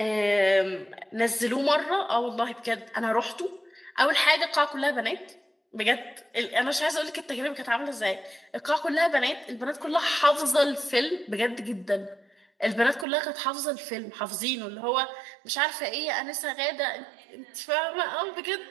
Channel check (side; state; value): left; drops out; at 13.1 s